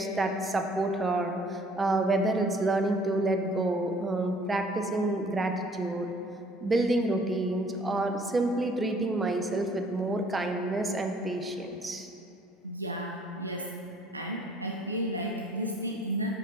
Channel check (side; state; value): both; normal; correlation 0.57